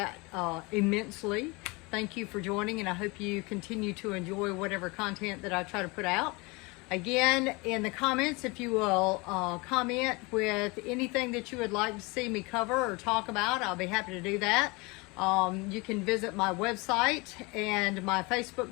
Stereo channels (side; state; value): right; quieter; 26.5 dB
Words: immensely. Thank you for joining, and I hope you continue to enjoy whatever content that I try to put out. Again, in the comments, if you will comment with anything that you would like to see me cover or talk about, I'll be happy to do that. You can visit my website and my